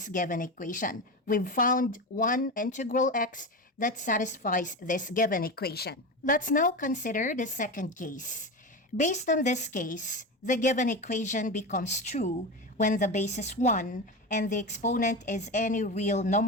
given equation. We've found one integral x that satisfies this given equation. Let's now consider the second case. Based on this case, the given equation becomes true when the base is 1 and the exponent is any real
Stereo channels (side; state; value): both; normal; correlation 0.22